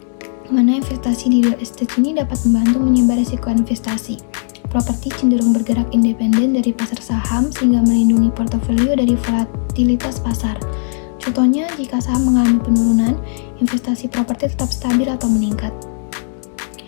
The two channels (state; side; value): silent; right; 67 dB below the other